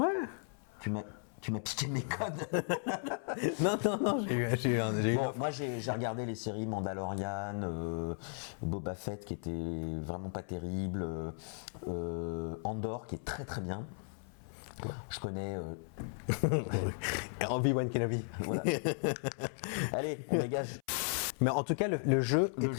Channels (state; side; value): silent; right; 54 dB below the other